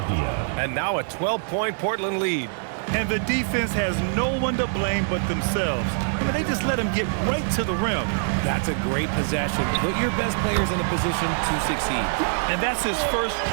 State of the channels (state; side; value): silent; left; 62 dB below the other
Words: And now a 12-point Portland lead. And the defense has no one to blame but themselves. I mean, they just let him get right to the rim. That's a great possession. Put your best players in a position to succeed. And that's his first